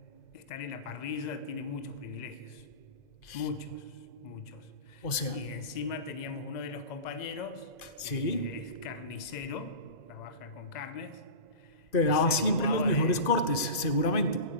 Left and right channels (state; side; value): late; right; 2.5 ms